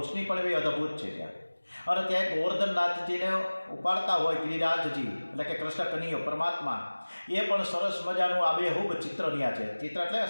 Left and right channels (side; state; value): both; inverted; correlation -1.00